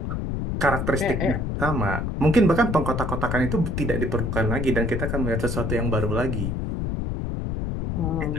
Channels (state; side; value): noise; left; rumble, 2 dB below the sound